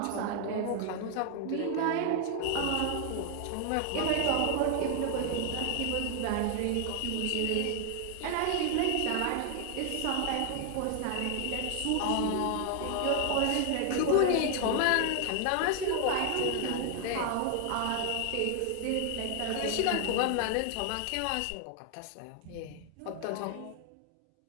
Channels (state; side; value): different; both; correlation 0.00